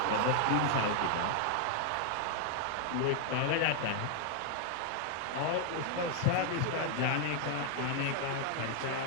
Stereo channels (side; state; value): both; different; correlation 0.00